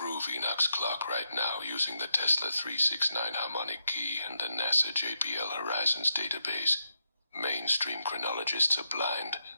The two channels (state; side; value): inverted; both; correlation -0.82